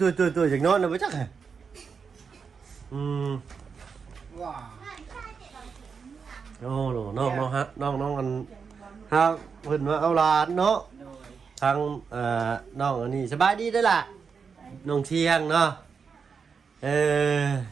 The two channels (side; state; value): left; quieter; 5.8 dB